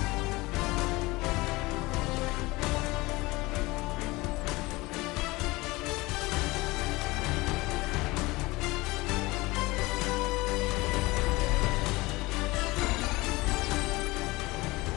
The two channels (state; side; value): quieter; right; 21.8 dB